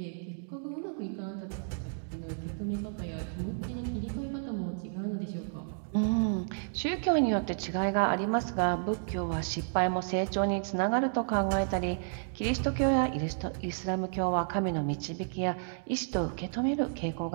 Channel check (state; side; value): silent; left; digital silence